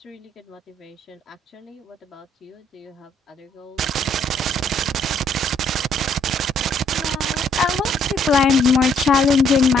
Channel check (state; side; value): normal; both; correlation 0.67